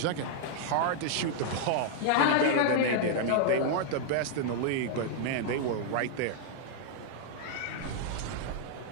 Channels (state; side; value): different; both; correlation -0.01